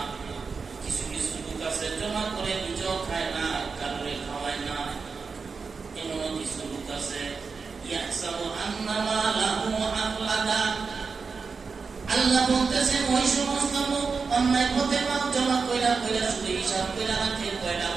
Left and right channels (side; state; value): left; quieter; 5.0 dB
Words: কিছু কিছু লোক আছে জমা করে নিজেও খায় না, কারোরে খাওয়ায় না। এমনও কিছু লোক আছে, ইয়াহসাবু আন্না মালাহু আখলাদা। আল্লাহ বলতেছেন, ওই সমস্ত লোক অন্যায় পথে মাল জমা কইরা শুধু হিসাব কইরা রাখে, কয়টা